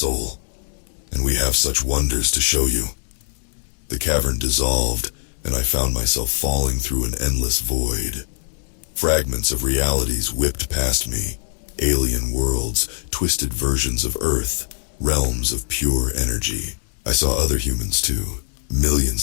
And we have such wonders to show you." The cavern dissolved, and I found myself falling through an endless void. Fragments of realities whipped past me, alien worlds, twisted versions of Earth, realms of pure energy. I saw other humans too,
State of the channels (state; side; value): silent; right; 64 dB below the other